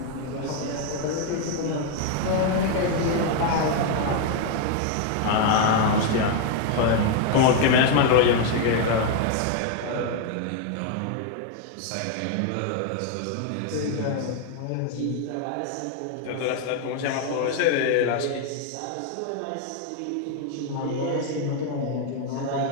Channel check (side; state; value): both; different; correlation 0.00